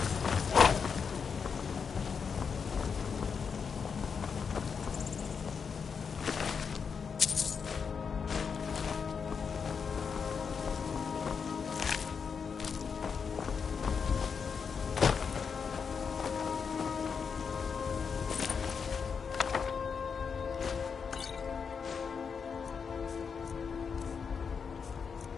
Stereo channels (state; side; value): quieter; right; 6.1 dB